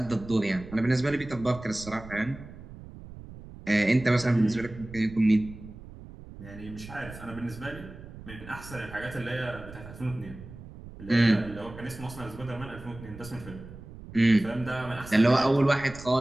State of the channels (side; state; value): right; noise; rumble, 15 dB below the sound